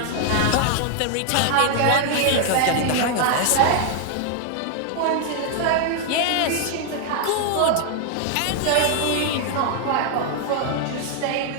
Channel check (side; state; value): both; different; correlation 0.00